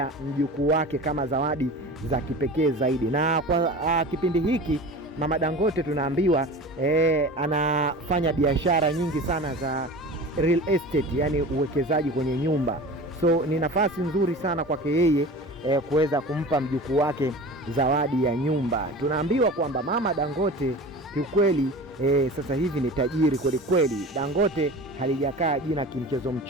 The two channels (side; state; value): both; normal; correlation 0.35